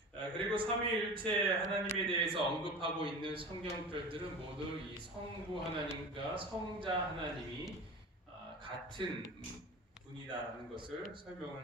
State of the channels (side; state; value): both; normal; correlation 0.34